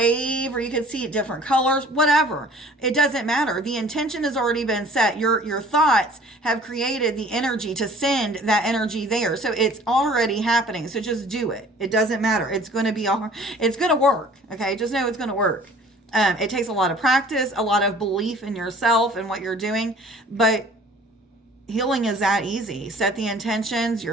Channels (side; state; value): both; normal; correlation 0.50